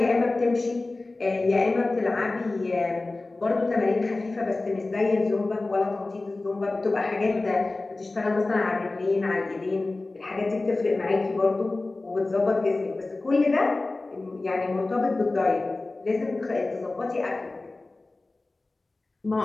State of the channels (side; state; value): right; quieter; 3.2 dB